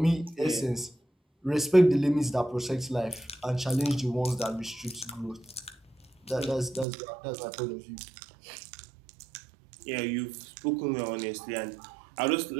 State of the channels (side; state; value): left; drops out; at 6.9 s